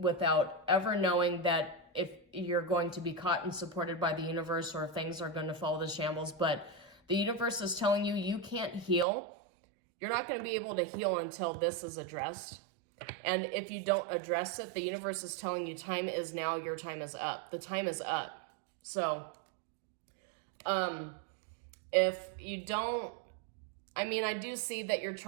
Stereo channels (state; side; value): drops out; left; at 9.1 s